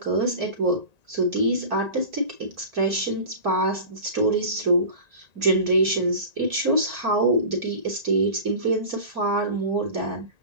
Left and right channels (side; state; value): left; late; 1.9 ms